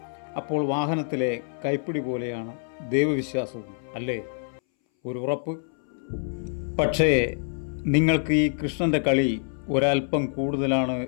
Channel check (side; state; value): right; silent; 60 dB below the other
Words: അപ്പോൾ വാഹനത്തിലെ കൈപ്പിടി പോലെയാണ് ദൈവവിശ്വാസവും, അല്ലേ? ഒരു ഉറപ്പ്. പക്ഷേ നിങ്ങൾക്ക് ഈ കൃഷ്ണൻ്റെ കളി ഒരൽപ്പം കൂടുതലാണ്